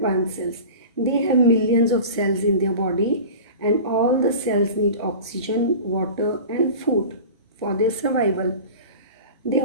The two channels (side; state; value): both; inverted; correlation -0.36